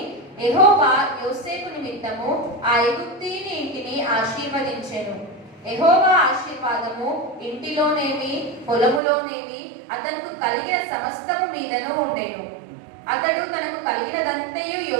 యెహోవా యోసేపు నిమిత్తము ఆ ఐగుప్తీయుని ఇంటిని ఆశీర్వదించెను. యెహోవా ఆశీర్వాదము ఇంటిలోనేమి పొలములోనేమి అతనికి కలిగిన సమస్తము మీదను ఉండెను. అతడు తనకు కలిగినదంతయు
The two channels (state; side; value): drops out; left; at 9.0 s